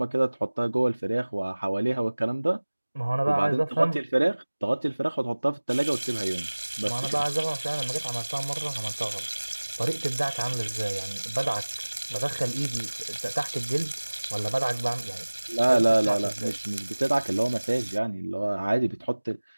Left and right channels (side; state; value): both; inverted; correlation -1.00